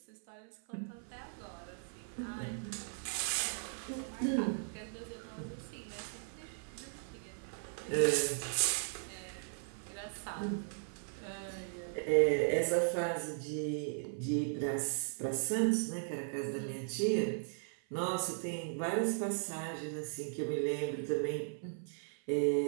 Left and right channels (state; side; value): silent; left; 53 dB below the other